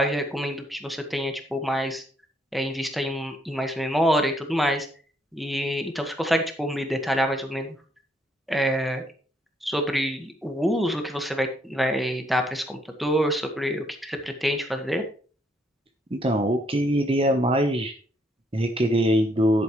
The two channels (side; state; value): both; normal; correlation 0.71